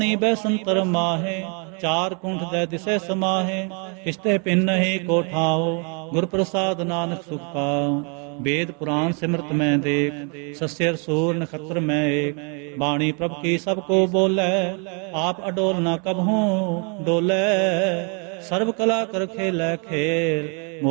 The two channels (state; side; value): quieter; left; 37.0 dB